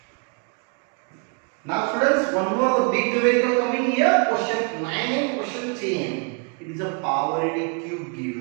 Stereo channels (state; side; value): quieter; left; 38.2 dB